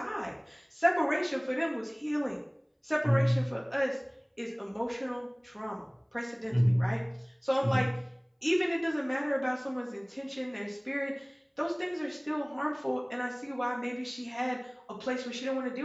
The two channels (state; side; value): identical; both; correlation 1.00